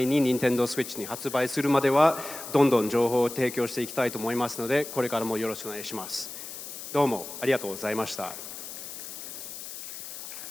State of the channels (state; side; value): noise; left; hiss, 10 dB below the sound